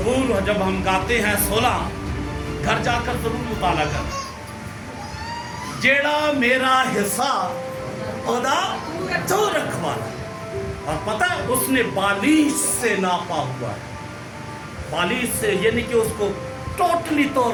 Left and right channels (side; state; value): both; identical; correlation 1.00